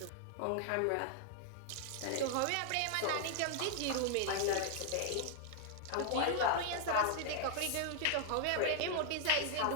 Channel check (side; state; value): both; different; correlation 0.00